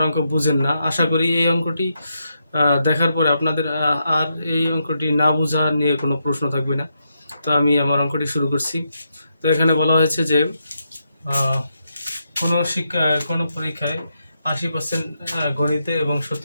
অঙ্ক বুঝেন না, আশা করি এই অঙ্কটি দেখার পরে আপনাদের আর এই অঙ্কটি না বোঝা নিয়ে কোনো প্রশ্ন থাকবে না। তো আমি আমার অঙ্কটি শুরু করছি। তো এখানে বলা হয়েছে যে কোনো পরীক্ষায় 80% গণিতে এবং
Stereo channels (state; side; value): inverted; both; correlation -0.82